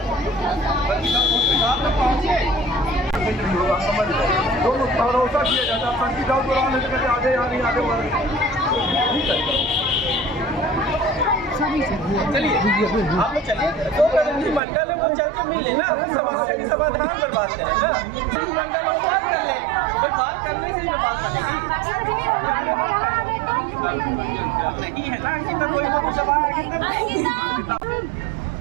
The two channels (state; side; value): drops out; left; at 14.6 s